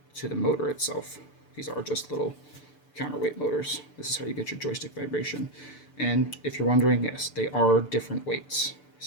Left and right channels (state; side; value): late; right; 6.8 ms